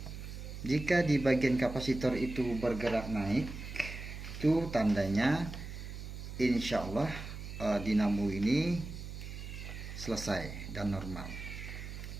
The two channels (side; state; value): right; noise; hum, 9 dB below the sound